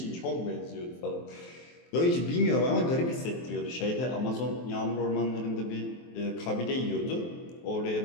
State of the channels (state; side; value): late; right; 23 ms